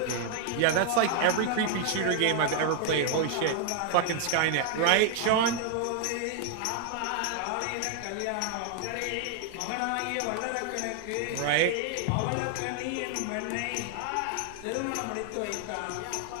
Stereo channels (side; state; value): both; different; correlation 0.00